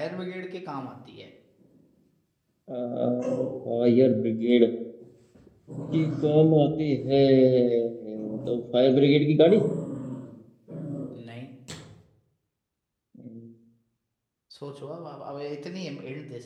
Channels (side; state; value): both; identical; correlation 1.00